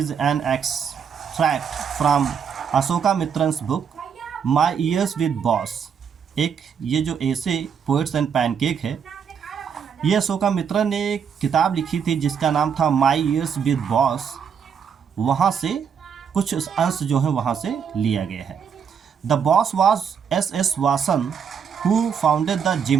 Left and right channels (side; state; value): left; quieter; 7.1 dB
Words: an extract from Asokamitran's book my years with boss. एक ये जो ऐसे पोएट्स एंड पैनकेक है, ये अशोका मित्रन ने एक किताब लिखी थी जिसका नाम था माई ईयर्स विद बॉस। वहाँ से कुछ अंश जो है वहाँ से लिया गया है। The boss was S Vasan who founded the